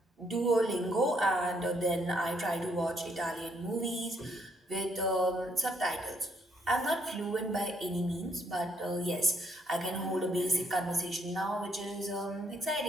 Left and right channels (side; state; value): both; normal; correlation 0.71